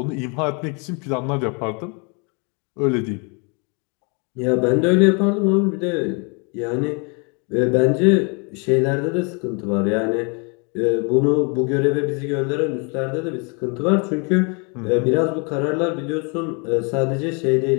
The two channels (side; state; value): right; quieter; 34.1 dB